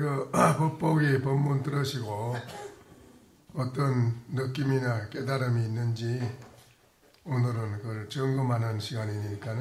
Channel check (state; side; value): identical; both; correlation 1.00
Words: 법보기 본문 들으시고 어떤 느낌이나 깨달음이 있는지 오늘은 그걸 점검하는